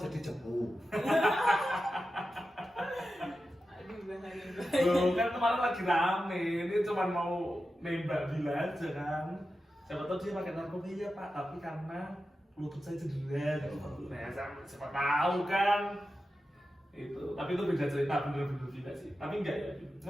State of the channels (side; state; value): both; normal; correlation 0.91